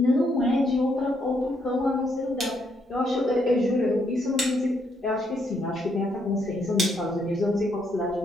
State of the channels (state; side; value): normal; both; correlation 0.75